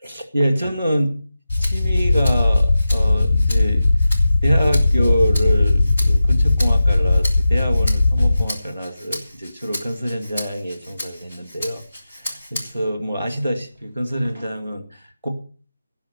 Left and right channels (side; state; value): both; inverted; correlation -0.92